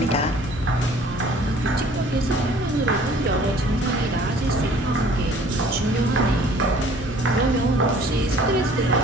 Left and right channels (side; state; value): both; normal; correlation 0.53